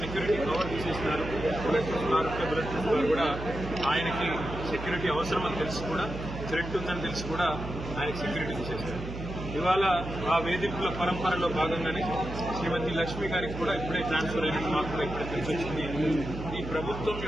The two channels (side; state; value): right; noise; hum, 8 dB below the sound